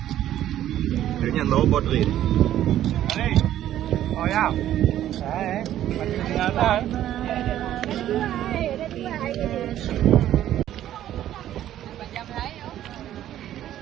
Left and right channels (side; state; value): left; quieter; 12.2 dB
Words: Kayaknya low body. Oh ya, masih kelihatan.